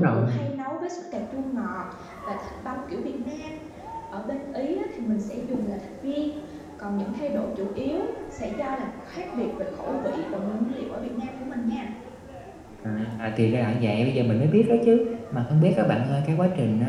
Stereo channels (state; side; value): identical; both; correlation 1.00